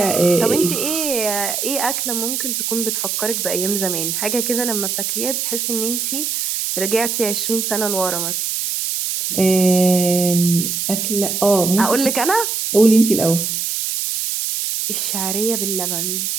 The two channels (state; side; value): noise; right; hiss, 1 dB below the sound